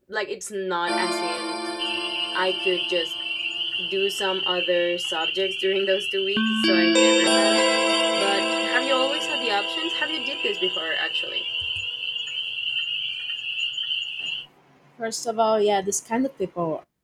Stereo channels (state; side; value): identical; both; correlation 1.00